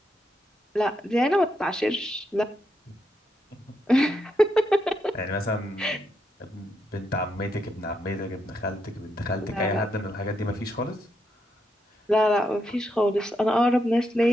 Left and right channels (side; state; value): both; normal; correlation 0.81